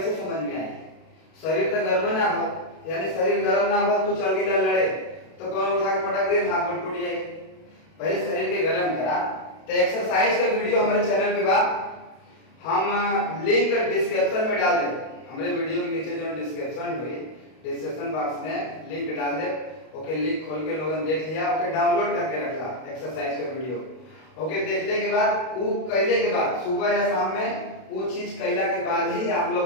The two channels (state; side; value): late; right; 32 ms